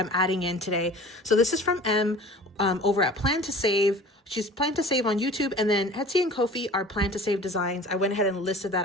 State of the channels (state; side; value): normal; both; correlation 0.43